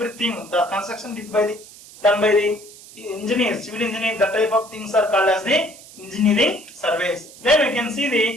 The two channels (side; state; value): right; noise; hiss, 19 dB below the sound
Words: the construction done by the engineers, civil engineering, that type of things are called as the engineering surveys. Then we can see